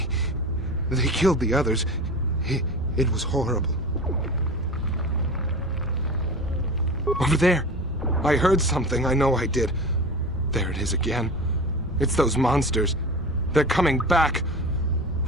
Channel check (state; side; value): normal; both; correlation 0.32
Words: killed the others. It was horrible. Over there! I heard something, I know I did. There it is again. It's those monsters. They're coming back.